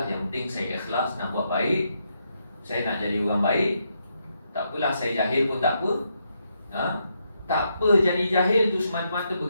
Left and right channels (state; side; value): inverted; both; correlation -0.80